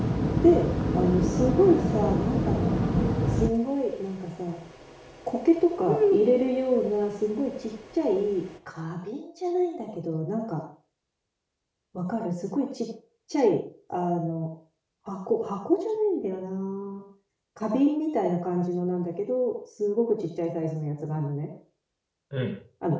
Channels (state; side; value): identical; both; correlation 1.00